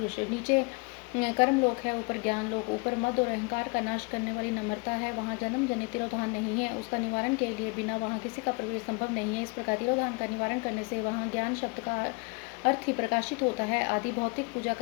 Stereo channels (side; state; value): right; quieter; 30.4 dB